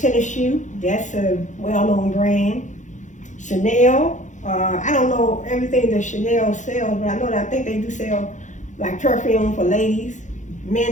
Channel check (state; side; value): late; right; 0.36 ms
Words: shoe. That's a well-known brand. Chanel. I don't know everything that Chanel sells, but I think they do sell like perfume for ladies,